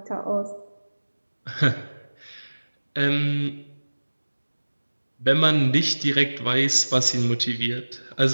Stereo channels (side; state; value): both; inverted; correlation -1.00